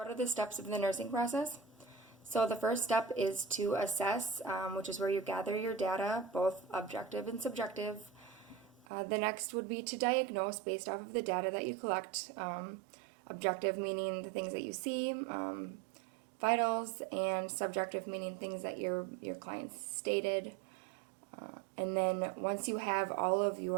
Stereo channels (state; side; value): drops out; left; at 8.8 s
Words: What are the steps of the nursing process? So the first step is to assess, which is where you gather your data, both objective and subjective. The next would be to diagnose based off of the data that you collect. Objective meaning the things that you see, vitals, and subjective meaning things that your clients stated. And then once you have all of